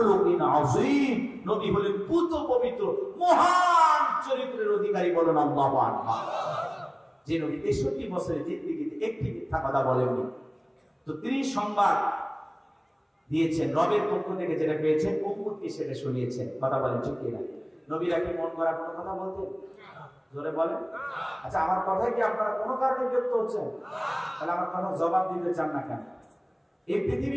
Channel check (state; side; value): identical; both; correlation 1.00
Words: আযীম, নবী হলেন পুত পবিত্র মহান চরিত্রের অধিকারী। বলেন আল্লাহু আকবার। যে নবী 63 বছরের জিন্দেগিতে একটি মিথ্যা কথা বলেননি। তো তিনি সংবাদ দিয়েছেন রবের পক্ষ থেকে, যেটা পেয়েছেন উম্মতকে সেটা শুনিয়েছেন। কথা বলেন ঠিক কিনা? নবীরা কি মন করা কোনো কথা বলতেন? জোরে বলেন। আচ্ছা, আমার কথায় কি আপনারা কোনো কারণে বিরক্ত হচ্ছেন? তাহলে আমার কথা জবাব দিতে চান না কেন? এই